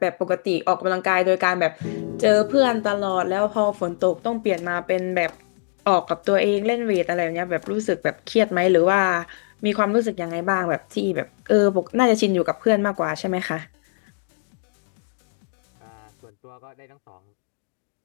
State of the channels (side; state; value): right; silent; digital silence